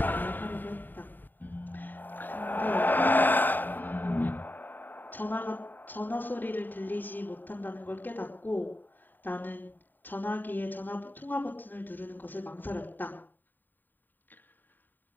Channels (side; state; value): right; late; 0.090 ms